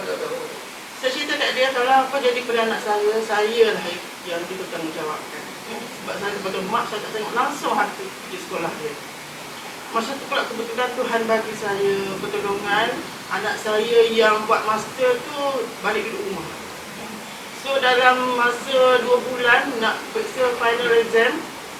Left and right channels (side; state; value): both; identical; correlation 1.00